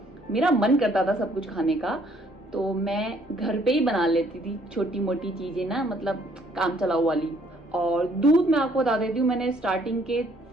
मेरा मन करता था सब कुछ खाने का, तो मैं घर पे ही बना लेती थी छोटी मोटी चीज़ें ना, मतलब काम चलाऊ वाली। और दूध मैं आपको बता देती हूँ, मैंने स्टार्टिंग के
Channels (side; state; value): both; normal; correlation 0.64